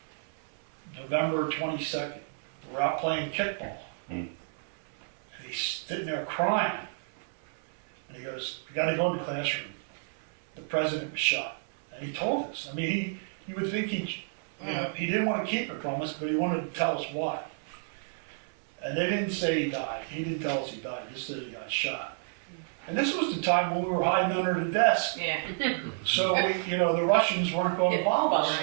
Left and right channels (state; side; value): silent; left; 57 dB below the other